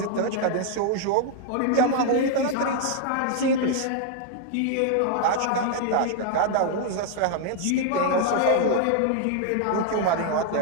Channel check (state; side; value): different; both; correlation 0.00